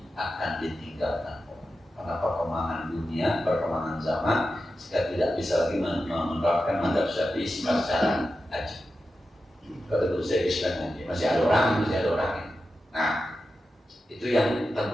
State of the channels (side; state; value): both; normal; correlation 0.91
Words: akan ditinggalkan orang. Karena perkembangan dunia, perkembangan zaman, kita tidak bisa lagi menerapkan mazhab Syafi'i secara aja. Kalau dulu saya Islam aja, masih ada orang. Nah, Itu yang